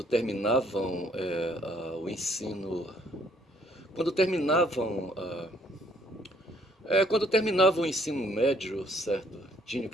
terminavam o ensino, quando terminavam, quando terminavam o ensino médio, certo, tinham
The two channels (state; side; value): normal; both; correlation 0.64